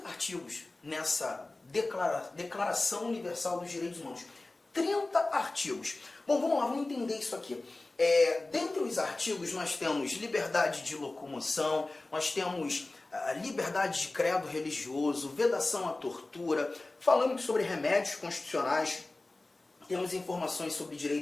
artigos nessa Declaração Universal dos Direitos Humanos. 30 artigos. Bom, vamos lá, vamos entender isso aqui. Dentre os artigos nós temos liberdade de locomoção, nós temos liberdade de credo religioso, vedação à tortura, falamos sobre remédios constitucionais, temos informações sobre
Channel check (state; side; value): quieter; right; 3.0 dB